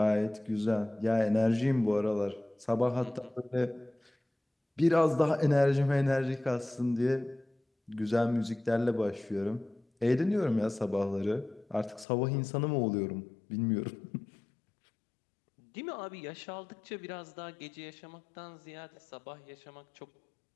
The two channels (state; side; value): drops out; right; at 12.1 s